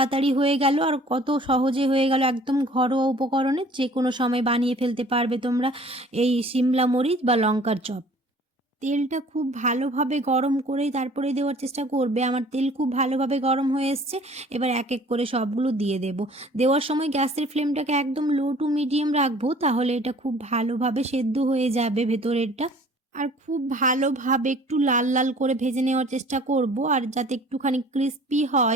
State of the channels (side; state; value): both; normal; correlation 0.51